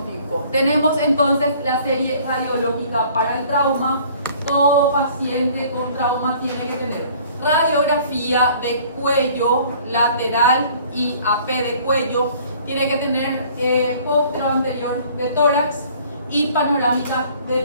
Tenemos entonces la serie radiológica para el trauma. Todo paciente con trauma tiene que tener radiografía de cuello lateral y AP de cuello. Tiene que tener póstero anterior de tórax y panorámica de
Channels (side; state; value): both; inverted; correlation -0.54